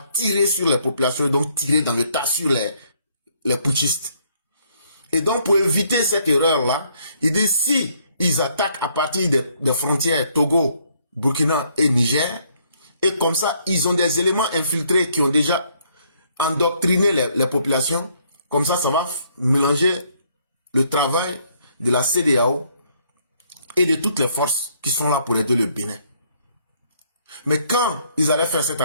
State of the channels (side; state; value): both; inverted; correlation -0.68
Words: tirer sur les populations et donc tirer dans le tas sur les putschistes. Et donc, pour éviter cette erreur-là, il dit si ils attaquent à partir des frontières Togo, Burkina et Niger, et comme ça, ils ont des éléments infiltrés qui ont déjà endoctriné les populations, comme ça, ça va mélanger le travail de la CEDEAO et de toutes les forces qui sont là pour aider le Bénin. Mais quand ils allaient faire cette